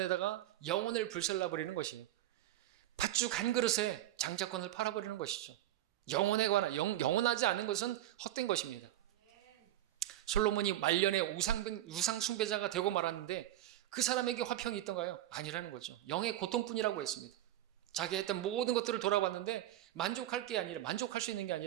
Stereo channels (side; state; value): left; quieter; 13.6 dB